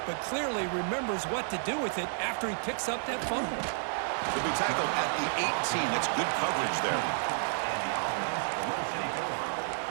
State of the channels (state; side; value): silent; left; 57 dB below the other